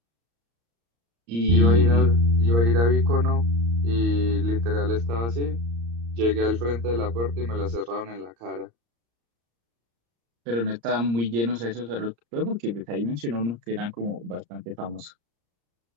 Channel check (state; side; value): late; left; 34 ms